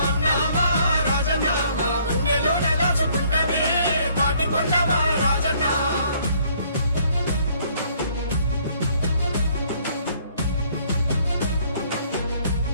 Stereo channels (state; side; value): inverted; both; correlation -0.63